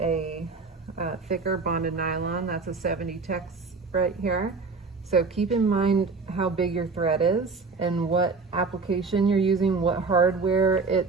thicker bonded nylon. That's a 70 Tacks right here. So keep in mind how big your thread is and what application you're using, what hardware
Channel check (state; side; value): quieter; left; 4.3 dB